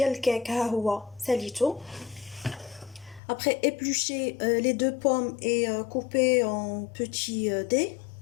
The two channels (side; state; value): right; drops out; at 3.2 s